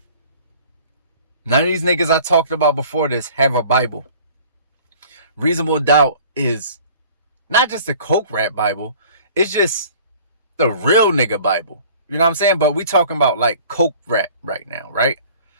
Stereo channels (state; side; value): inverted; both; correlation -0.49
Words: None of these niggas I talked about before this have a Bible. Reasonable Doubt is not just the coke rap Bible, it's just the real nigga Bible. You know what I'm saying? But we talking about like coke rap right now, right?